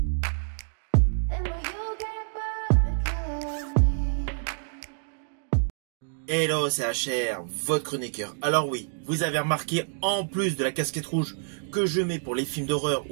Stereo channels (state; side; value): silent; left; digital silence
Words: Then will you get bored of killing me? Hello, c'est HR, votre chroniqueur. Alors oui, vous avez remarqué, en plus de la casquette rouge que je mets pour les films d'horreur